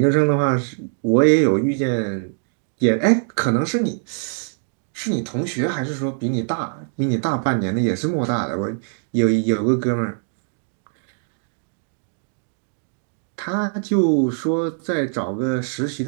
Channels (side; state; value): left; silent; digital silence